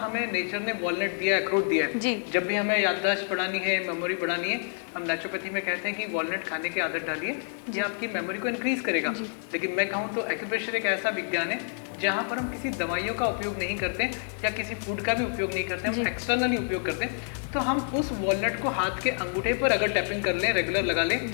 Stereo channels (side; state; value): right; silent; 59 dB below the other